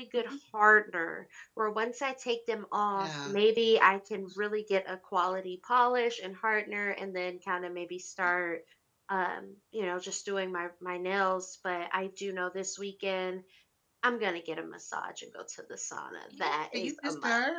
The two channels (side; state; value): both; identical; correlation 1.00